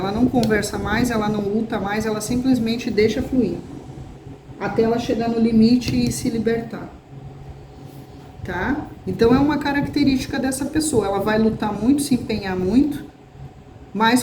não conversa mais, ela não luta mais, ela simplesmente deixa fluir. Até ela chegar no limite e se libertar. Tá? Então é uma característica dessa pessoa. Ela vai lutar muito, se empenhar muito, mas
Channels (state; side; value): identical; both; correlation 1.00